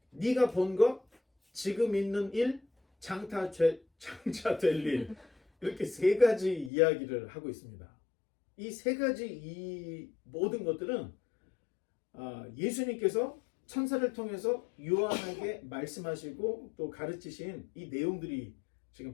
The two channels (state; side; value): drops out; right; at 6.7 s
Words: 네가 본 것, 지금 있는 일, 장차 될 일, 이렇게 세 가지 이야기를 하고 있습니다. 이 세 가지 이 모든 것들은 예수님께서 천사를 통해서 요한에게 말씀하시고 또 가르치신 이 내용들이